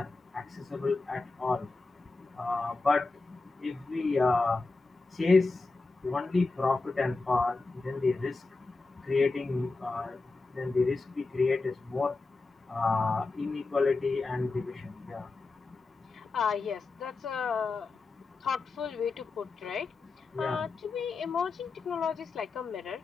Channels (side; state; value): right; quieter; 3.7 dB